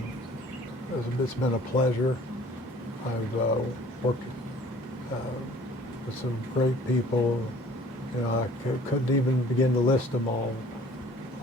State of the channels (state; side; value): normal; both; correlation 0.51